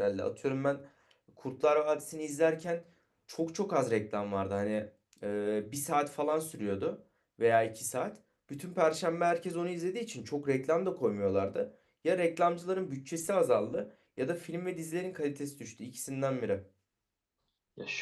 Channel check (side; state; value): both; identical; correlation 1.00